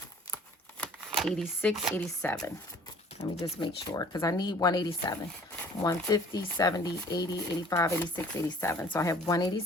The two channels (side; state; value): both; normal; correlation 0.52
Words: 86, 87. Let me just make sure, because I need 187. 150, 70, 80, 85, 86, 87. So I have